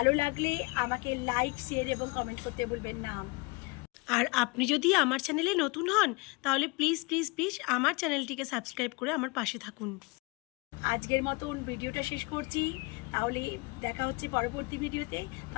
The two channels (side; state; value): right; quieter; 27.0 dB